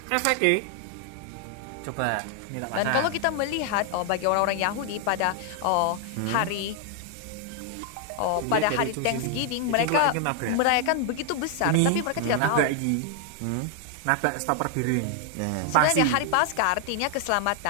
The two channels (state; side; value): different; both; correlation 0.00